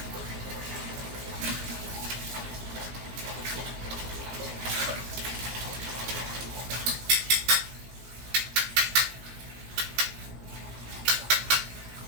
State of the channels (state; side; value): late; left; 17 ms